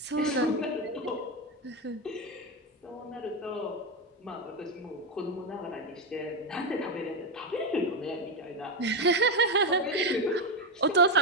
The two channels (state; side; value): normal; both; correlation 0.10